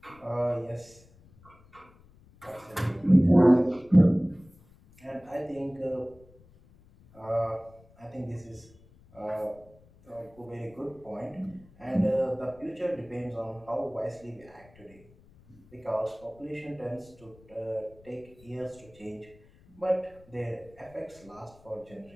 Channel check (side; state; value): left; noise; rumble, 26 dB below the sound